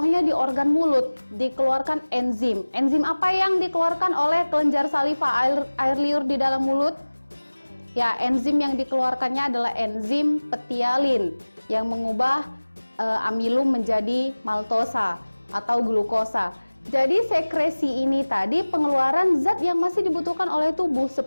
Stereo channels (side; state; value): both; inverted; correlation -1.00